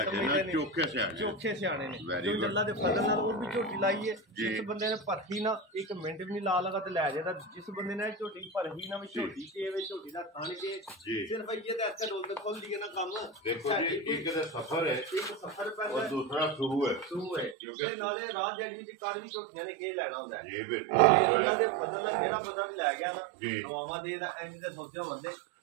समझदे ने चोखे सियाणे ने जो जल्ला दे फजल नाल वो भी झोटी लाई है जिस बंदे ने परखी ना एक मिनट भी नहीं ला लगा ते ले जादा जिस बंदे ने झोटी परखी ना भी झोटी के वे झोटी दा खान के सिर्फ ये ते ऐसे रोल खोल दिए ना काम देखो जी एक ते सफर है एक सफर पहले और दूसरा शुरू है क्योंकि नाले रात जड़ी दी कार भी ਝੋਟੀਆਂ ਨੇ ਕੀ ਲੈਣਾ ਹੁੰਦਾ ਜੀ ਬਿਲਕੁਲ ਉਹਨਾਂ ਦੇ ਫਜ਼ਲ ਦਾ ਜਿਹੜਾ ਬੰਦਾ ਵੀ ਲੈ ਗਿਆ ਨਾ ਦੁਆਵਾਂ ਦੇ ਦਾ ਇੰਜ ਦੇ ਸੋਚਿਆ ਬੰਦੇ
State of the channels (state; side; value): drops out; left; at 17.6 s